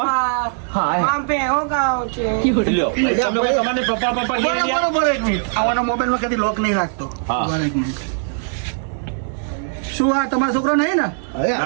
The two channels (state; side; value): silent; left; digital silence